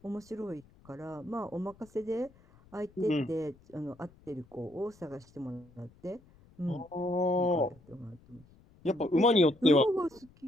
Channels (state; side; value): noise; left; rumble, 27 dB below the sound